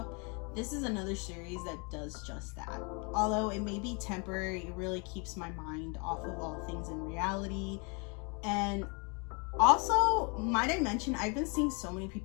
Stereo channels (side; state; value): right; quieter; 33.3 dB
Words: this is another series that does just that. Although it may be temporary, it really keeps my mind off of all things in reality. And also, might I mention, I've been seeing so many